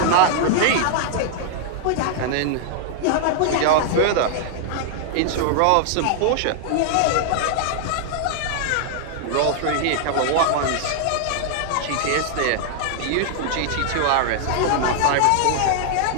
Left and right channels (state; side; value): different; both; correlation -0.01